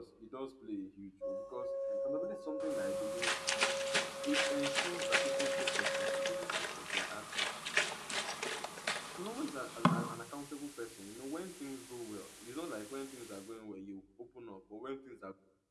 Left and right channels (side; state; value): both; identical; correlation 1.00